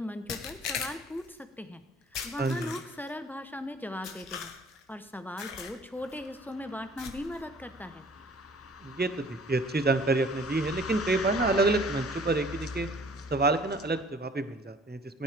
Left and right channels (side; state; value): both; normal; correlation 0.53